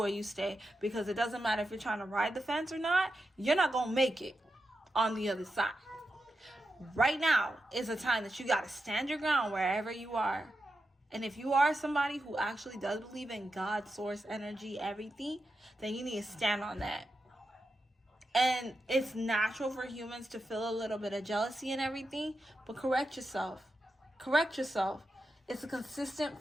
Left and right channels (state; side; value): normal; both; correlation 0.89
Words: you stay. Because it doesn't matter if you're trying to ride the fence or not. You're not going to make it on the other side. Right now is a time that you got to stand your ground wherever you are. And if you are somebody who actually does believe in God, source, energy, everything, then you need to stand on that. And it's natural for humans to feel a little bit of jealousy and everything. But correct yourself. Correct yourself. It's a consistent